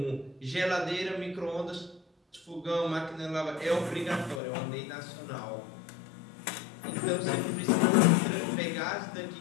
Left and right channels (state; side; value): drops out; right; at 4.4 s